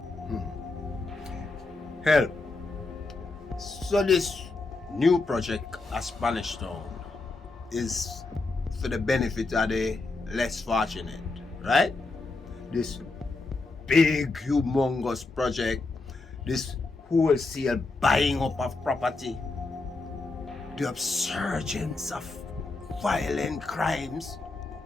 Help. So this new project at Spanish Town is for the benefit of the less fortunate, right? This big, humongous project, this wholesale buying up of property, the upsurgence of violent crimes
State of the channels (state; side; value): quieter; right; 3.5 dB